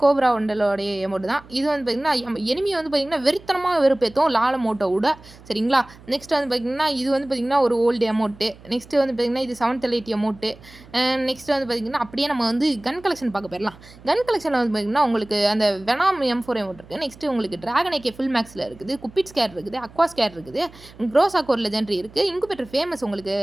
கோப்ரா வண்டலோடைய அமௌண்ட் தான். இது வந்து பார்த்திங்கன்னா எனிமி வந்து பார்த்திங்கன்னா வெறித்தனமாக வெறுப்பேற்றும் லால் அமௌண்ட்டை விட. சரிங்களா? நெக்ஸ்ட் வந்து பார்த்திங்கன்னா இது வந்து பார்த்திங்கன்னா ஒரு ஓல்டு அமௌண்ட்டு. நெக்ஸ்ட்டு வந்து பார்த்திங்கன்னா இது 780 அமௌண்ட்டு. நெக்ஸ்ட்டு வந்து பார்த்திங்கன்னா அப்படியே நம்ம வந்து கன் கலெக்ஷன் பார்க்க போயிடலாம். கன் கலெக்ஷனில் வந்து பார்த்திங்கன்னா உங்களுக்கு அந்த வெனாம் M4 அமௌண்ட் இருக்குது. நெக்ஸ்ட்டு உங்களுக்கு ட்ராகன் AK ஃபுல் மேக்ஸில் இருக்குது. குப்பிட் ஸ்கேர் இருக்குது. அக்வா ஸ்கேர் இருக்குது. க்ரோசாக் ஒரு லெஜெண்டரி இருக்குது. இன்குபேட்டர் ஃபேமஸ் உங்களுக்கு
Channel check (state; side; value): noise; right; hum, 22 dB below the sound